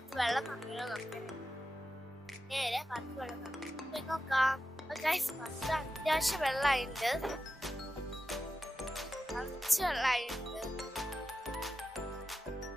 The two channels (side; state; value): both; normal; correlation 0.91